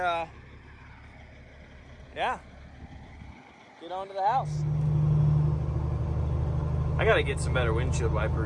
yeah, get on to the house. I gotta get some better windshield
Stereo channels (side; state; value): both; identical; correlation 1.00